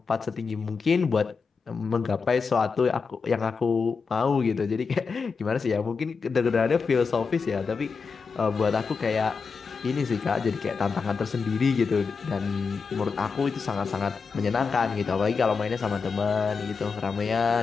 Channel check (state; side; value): quieter; right; 5.1 dB